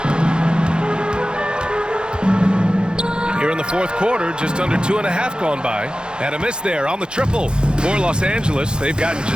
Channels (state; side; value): late; left; 0.049 ms